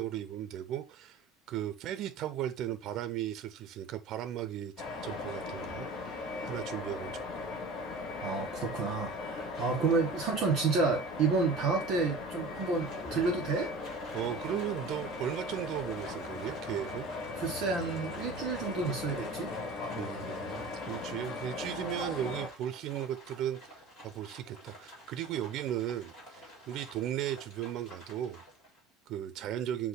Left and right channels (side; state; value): left; quieter; 3.9 dB